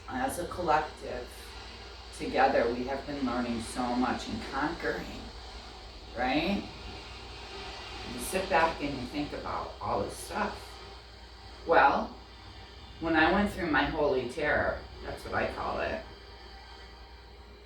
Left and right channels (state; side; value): identical; both; correlation 1.00